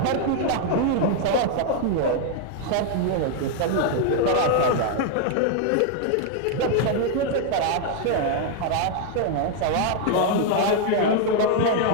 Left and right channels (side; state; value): both; different; correlation 0.00